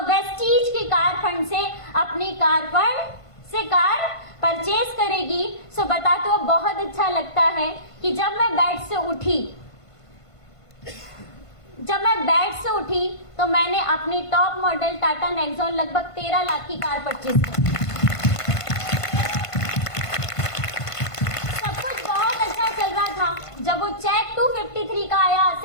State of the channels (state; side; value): late; right; 1.5 ms